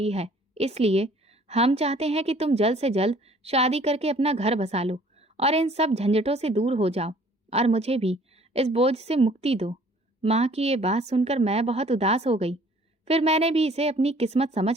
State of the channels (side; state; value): both; normal; correlation 0.55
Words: है, इसलिए हम चाहते हैं कि तुम जल्द से जल्द शादी करके अपना घर बसा लो और इन सब झंझटों से दूर हो जाओ और मुझे भी इस बोझ से मुक्ति दो। माँ की ये बात सुनकर मैं बहुत उदास हो गई। फिर मैंने भी इसे अपनी किस्मत